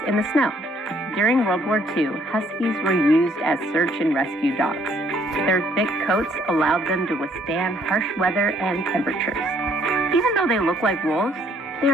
in the snow. During World War II, Huskies were used as search and rescue dogs. Their thick coats allowed them to withstand harsh weather and temperatures. Even though they look like wolves, they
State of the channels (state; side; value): normal; both; correlation 0.64